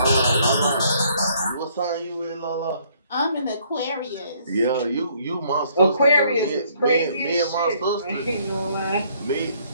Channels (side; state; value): both; inverted; correlation -0.65